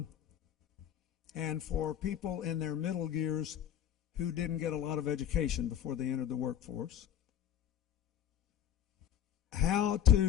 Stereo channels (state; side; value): quieter; right; 9.8 dB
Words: and for people in their middle years who didn't get a lot of education before they entered the workforce. How